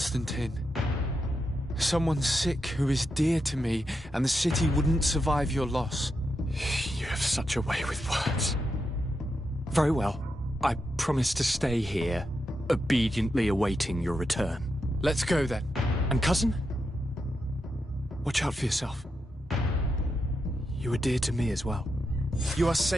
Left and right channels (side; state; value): both; normal; correlation 0.85